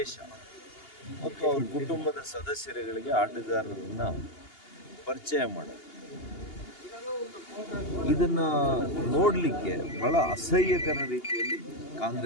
ಮತ್ತು ಅವ್ರ ಕುಟುಂಬದ ಸದಸ್ಯರುಗಳಿಗೆ ಆಟಗಾರರನ್ನ ಪರಿಚಯ ಮಾಡೋದು, ಇದನ್ನು ನೋಡಲಿಕ್ಕೆ ಬಹಳ ಅಸಹ್ಯಕರ ರೀತಿಯಲ್ಲಿ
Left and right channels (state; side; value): late; right; 2.8 ms